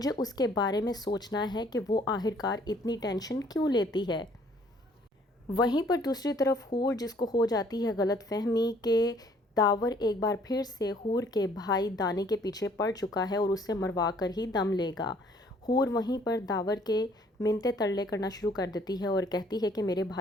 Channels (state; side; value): normal; both; correlation 0.60